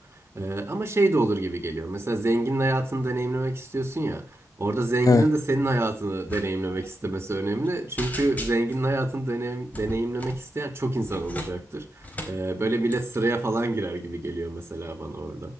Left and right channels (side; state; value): both; normal; correlation 0.87